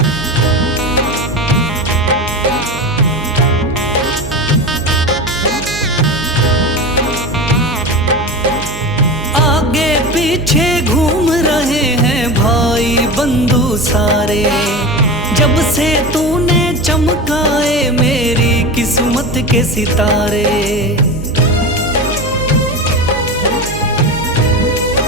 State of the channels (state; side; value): noise; right; hum, 11 dB below the sound